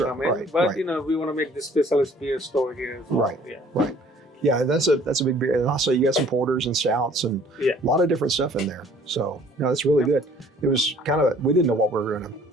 come in, right, but right. we want to make the specialist beer store here as well. Right. Yeah. Right. Yeah, that's a big beer. And also you got some porters and stouts and Yeah. a lot of different stuff in there. So no, that's really good. It was kind of we didn't know what we were going to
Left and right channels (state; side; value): normal; both; correlation 0.55